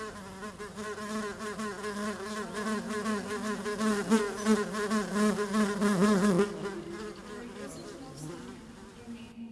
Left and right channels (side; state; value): both; identical; correlation 1.00